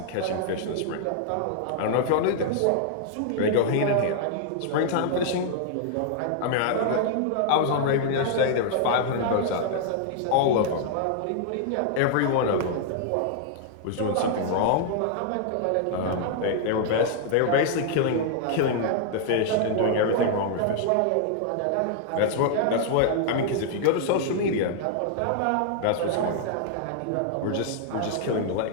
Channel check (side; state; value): both; different; correlation -0.01